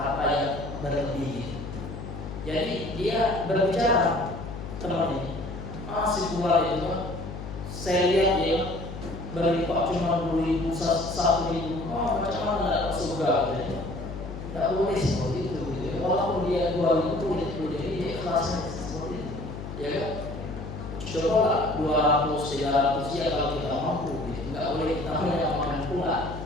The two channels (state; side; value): noise; left; hum, 9 dB below the sound